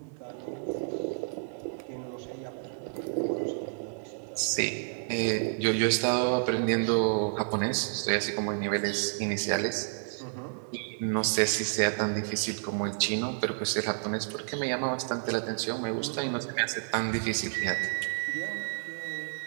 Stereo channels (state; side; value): silent; left; 58 dB below the other